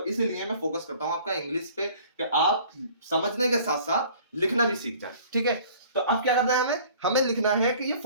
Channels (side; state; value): both; inverted; correlation -0.51